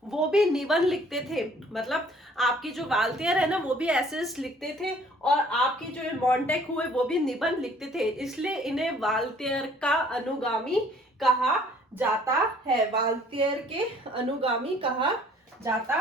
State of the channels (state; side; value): normal; both; correlation 0.57